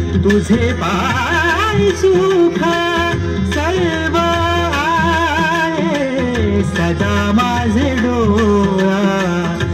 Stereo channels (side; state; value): both; identical; correlation 1.00